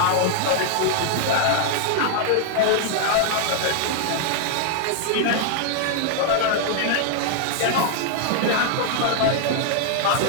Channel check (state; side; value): different; both; correlation -0.01